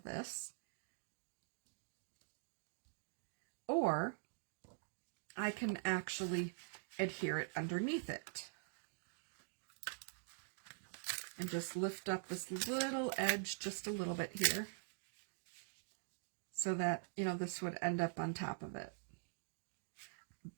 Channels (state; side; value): silent; left; digital silence